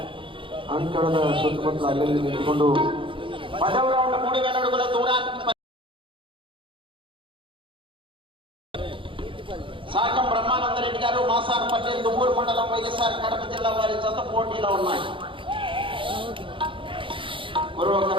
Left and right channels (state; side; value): late; left; 0.25 ms